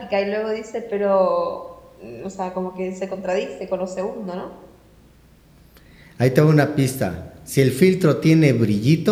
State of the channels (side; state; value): both; identical; correlation 1.00